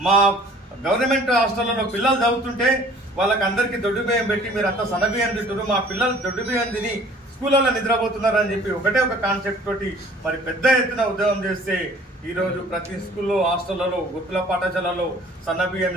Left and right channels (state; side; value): normal; both; correlation 0.52